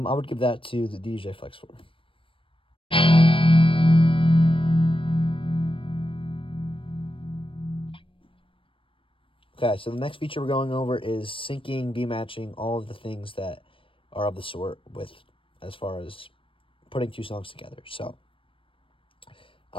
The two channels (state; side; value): late; right; 0.25 ms